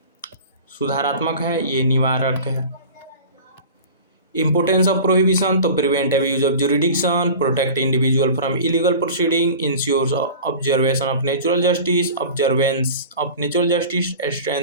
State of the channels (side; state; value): both; inverted; correlation -0.37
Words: सुधारात्मक है, ये निवारक है। Importance of prohibition to prevent abuse of jurisdiction, protect individual from illegal proceeding, ensures observation of natural justice, observance of natural justice,